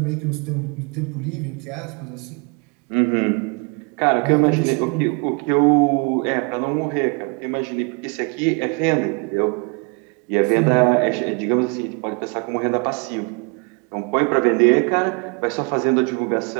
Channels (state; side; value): quieter; left; 32.8 dB